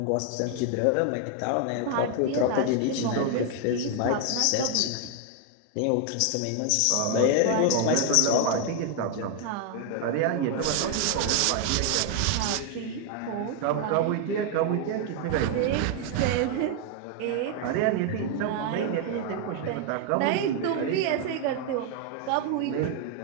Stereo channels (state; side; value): different; both; correlation 0.01